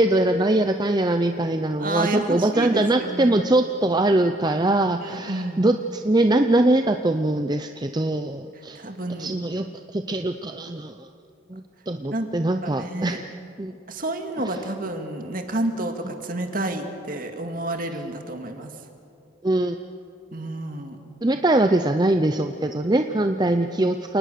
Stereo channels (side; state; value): both; normal; correlation 0.68